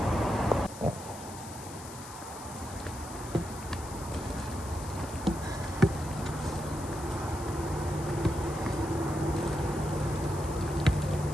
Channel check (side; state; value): left; noise; hiss, 14 dB below the sound